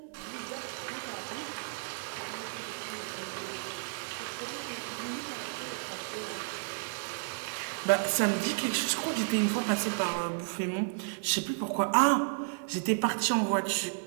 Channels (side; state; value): left; silent; digital silence